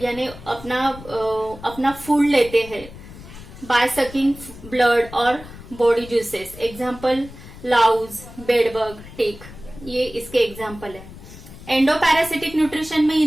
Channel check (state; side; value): noise; left; rumble, 16 dB below the sound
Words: यानी अपना फूड लेते हैं बाय सकिंग ब्लड और बॉडी ज्यूसेस. एग्जाम्पल लाउज, बेडबग, टिक, ये इसके एग्जाम्पल है. एंडोपैरासिटिक न्यूट्रिशन में